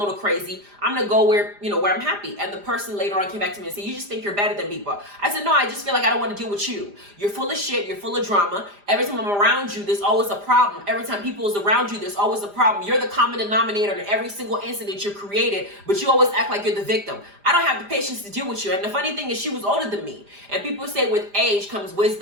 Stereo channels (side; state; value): left; late; 5.0 ms